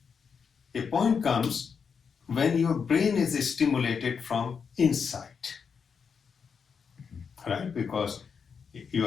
A point comes when your brain is stimulated from inside, right? Because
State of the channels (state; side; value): quieter; right; 6.2 dB